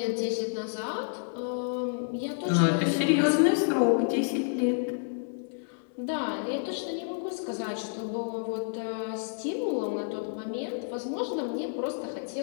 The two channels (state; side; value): silent; right; digital silence